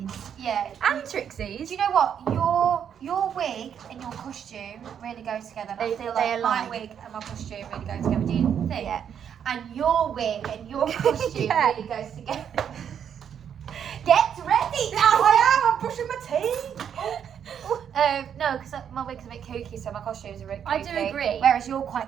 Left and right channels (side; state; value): left; quieter; 8.4 dB